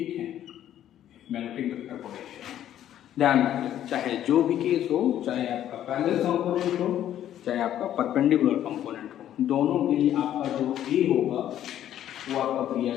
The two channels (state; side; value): quieter; right; 11.4 dB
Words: है, मैग्नेटिक वेक्टर पोटेंशियल। ध्यान रखिए, चाहे जो भी केस हो, चाहे आपका पैरेलल कंपोनेंट हो, चाहे आपका परपेंडिकुलर कंपोनेंट हो, दोनों के लिए आपका जो A होगा वो आपका भैया